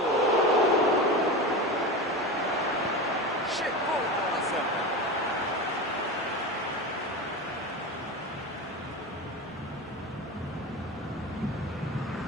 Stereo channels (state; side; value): normal; both; correlation 0.25